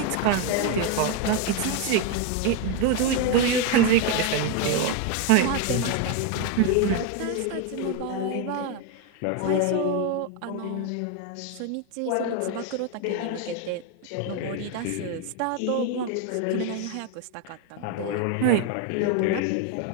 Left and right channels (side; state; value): both; different; correlation 0.02